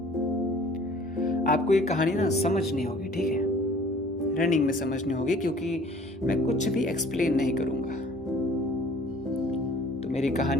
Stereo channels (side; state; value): both; normal; correlation 0.52